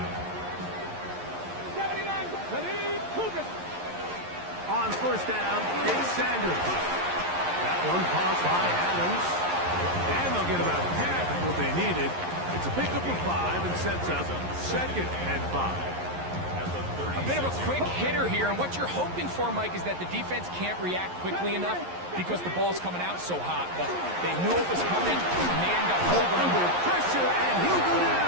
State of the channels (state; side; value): late; left; 11 ms